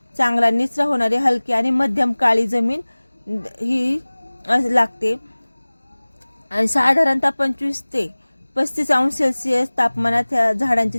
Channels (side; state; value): both; inverted; correlation -1.00